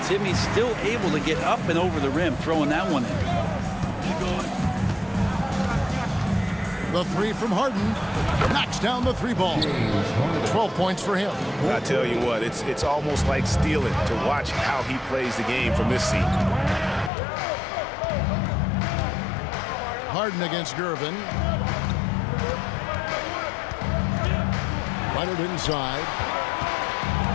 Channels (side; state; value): right; drops out; at 17.1 s